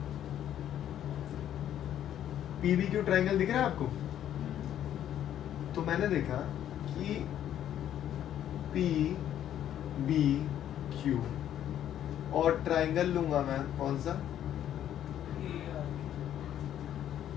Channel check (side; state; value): right; quieter; 10.9 dB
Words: P B Q triangle दिख रहा है आपको। तो मैंने देखा कि पी बी क्यू, और ट्राइंगल लूंगा मैं कौन सा,